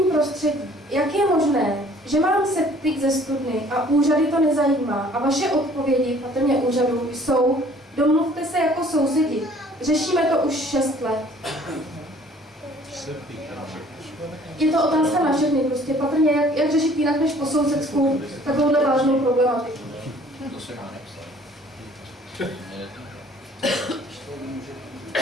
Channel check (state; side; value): normal; both; correlation 0.55